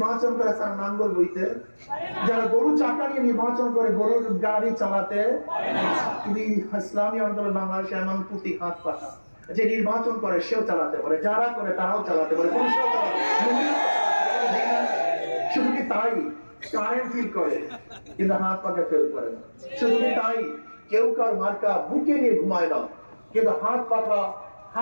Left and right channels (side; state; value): both; inverted; correlation -1.00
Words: করে, তারা নাঙ্গল বইতে। যারা গরু চাকা নিয়ে নির্বাচন করে, গরুর গাড়ি চালাতে। কিন্তু ইসলামী আন্দোলন বাংলাদেশে এমন প্রতীক হাত পাখা, যে নির্বাচন করে সেও চালাতে পারে, যারা করে তারাও চালাতে পারে, পুলিশরাও চালাতে পারে। শুধু কি তাই, কারেন্ট ফিল করে কিন্তু হাত পাখা ফেল করে না। শুধু কি তাই, কেউ কার মার্কা বুকে নিয়ে ঘুমায় না, কিন্তু হাত